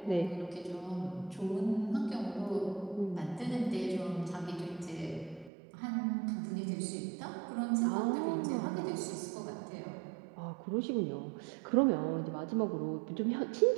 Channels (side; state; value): left; drops out; at 5.5 s